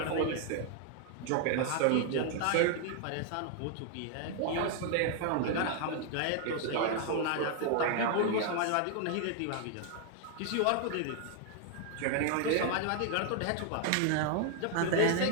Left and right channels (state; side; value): different; both; correlation 0.00